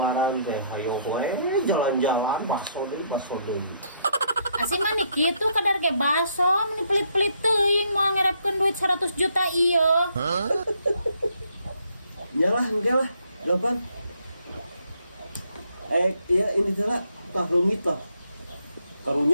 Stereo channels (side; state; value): both; inverted; correlation -0.71